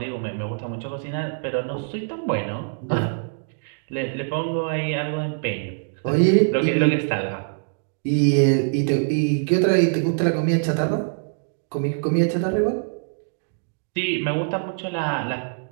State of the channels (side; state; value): left; silent; digital silence